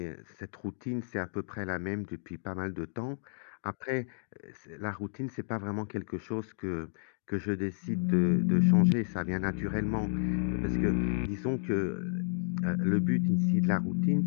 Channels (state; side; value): silent; right; digital silence